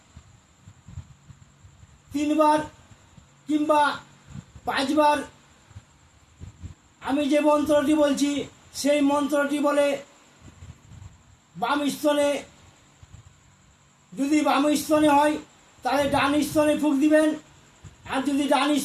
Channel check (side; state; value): both; identical; correlation 1.00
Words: 3 বার কিংবা 5 বার আমি যে মন্ত্রটি বলছি সেই মন্ত্রটি বলে বাম স্তনে, যদি বাম স্তনে হয় তাহলে ডান স্তনে ফুঁক দিবেন, আর যদি ডান